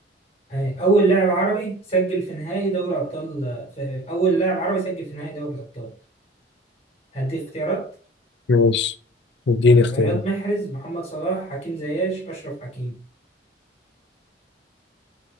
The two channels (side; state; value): both; normal; correlation 0.44